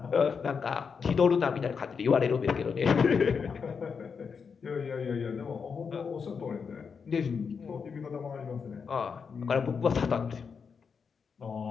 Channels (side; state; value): right; quieter; 5.9 dB